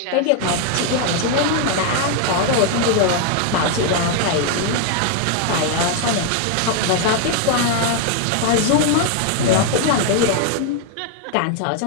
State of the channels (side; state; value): both; different; correlation 0.00